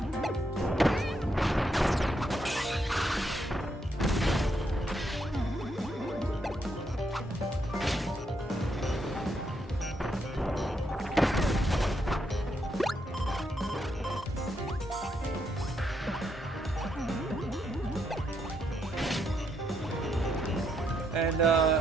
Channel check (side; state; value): both; normal; correlation 0.78